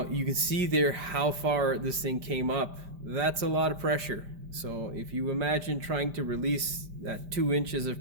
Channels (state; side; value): late; left; 5.1 ms